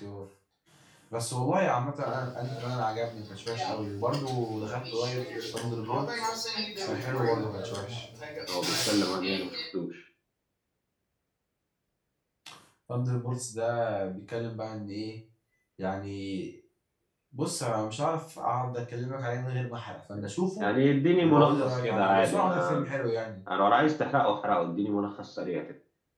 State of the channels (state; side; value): identical; both; correlation 1.00